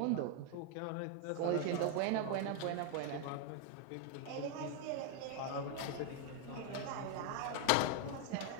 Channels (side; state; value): both; different; correlation 0.01